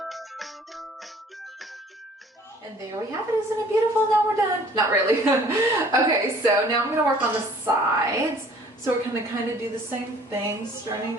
And there we have it. Isn't it beautiful? Now we're done. Not really. Okay, so now I'm going to work on the sides. So we're going to kind of do the same thing, starting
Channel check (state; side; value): normal; both; correlation 0.54